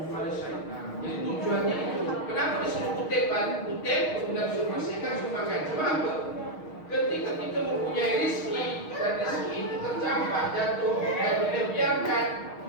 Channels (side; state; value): right; late; 6.4 ms